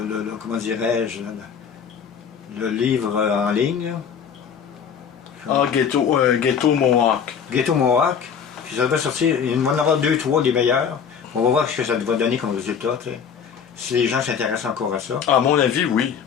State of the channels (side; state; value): right; quieter; 7.2 dB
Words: comment dirais-je, le livre en ligne. Ah, Ghetto Mohawk. Ghetto Mohawk. Puis ça devrait sortir, il va en avoir 2, 3 des meilleurs. On va voir ce que ça va donner comme résultat, tu sais. Si les gens s'intéressent encore à ça. À mon avis, oui.